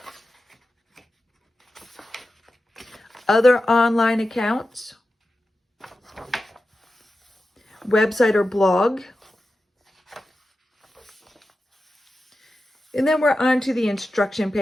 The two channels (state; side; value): normal; both; correlation 0.92